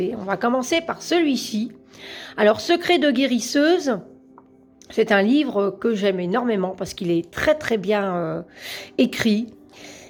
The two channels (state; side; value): identical; both; correlation 1.00